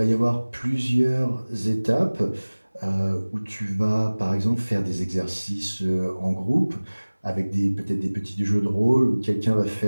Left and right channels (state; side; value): inverted; both; correlation -1.00